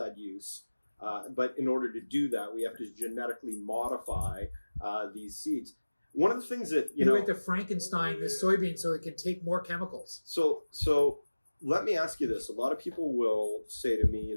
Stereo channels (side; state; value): both; inverted; correlation -1.00